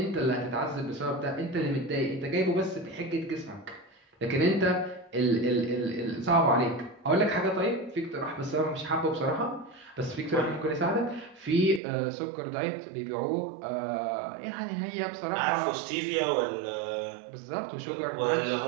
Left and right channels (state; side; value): drops out; left; at 11.8 s